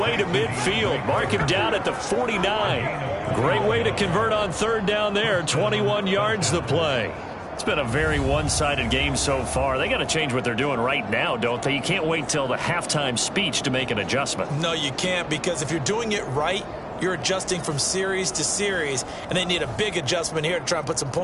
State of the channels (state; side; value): identical; both; correlation 1.00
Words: to midfield. Mark him down at the 49. Great way to convert on third down there. 21 yards the play. It's been a very one-sided game so far. They got to change what they're doing right now, don't they? You can't wait till the halftime speech to make an adjustment. No, you can't, because if you're doing it right, you're adjusting from series to series, and they need a big adjustment here to try and put some